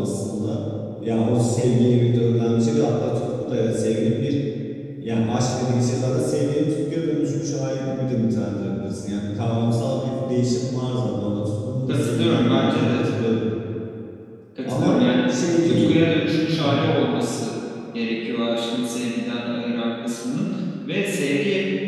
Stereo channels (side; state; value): both; identical; correlation 1.00